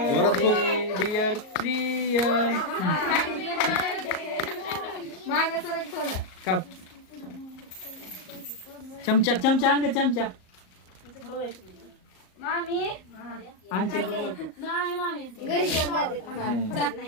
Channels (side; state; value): right; late; 38 ms